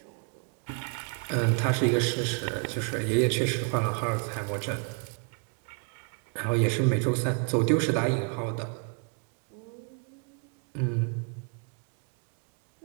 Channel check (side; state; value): left; quieter; 38.5 dB